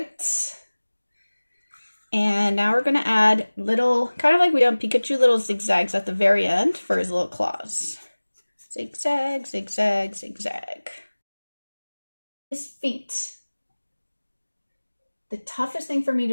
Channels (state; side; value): inverted; both; correlation -1.00